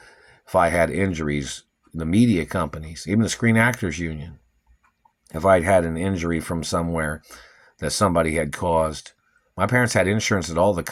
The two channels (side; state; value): both; identical; correlation 1.00